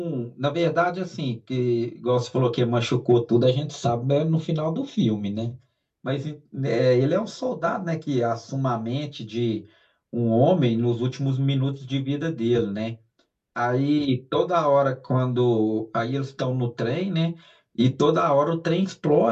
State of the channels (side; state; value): both; identical; correlation 1.00